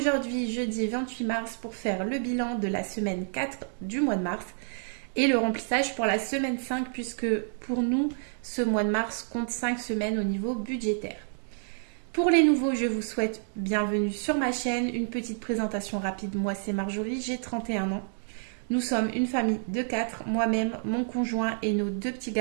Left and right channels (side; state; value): left; silent; digital silence